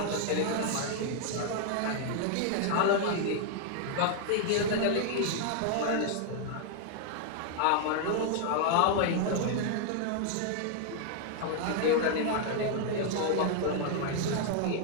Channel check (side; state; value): both; different; correlation 0.00